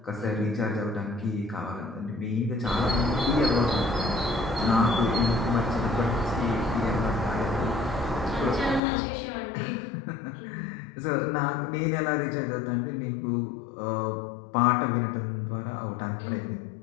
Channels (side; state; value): right; drops out; at 8.8 s